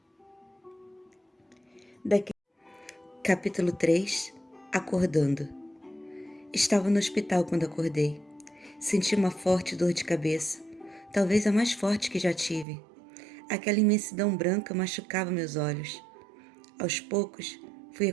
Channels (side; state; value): left; drops out; at 12.7 s